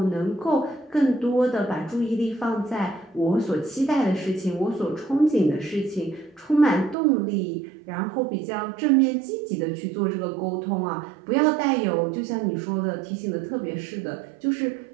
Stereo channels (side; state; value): left; drops out; at 7.0 s